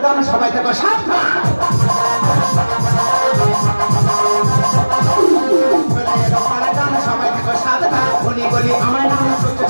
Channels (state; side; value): inverted; both; correlation -1.00